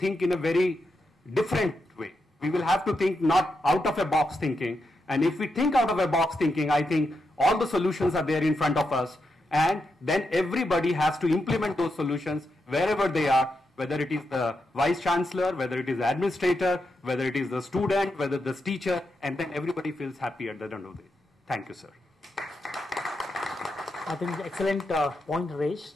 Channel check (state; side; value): normal; both; correlation 0.85